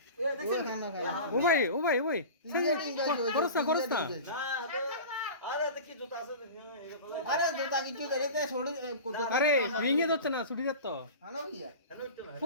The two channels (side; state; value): both; inverted; correlation -0.34